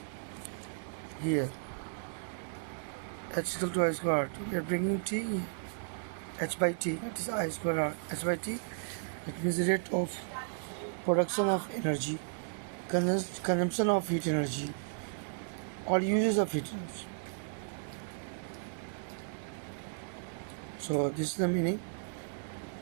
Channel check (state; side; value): silent; left; digital silence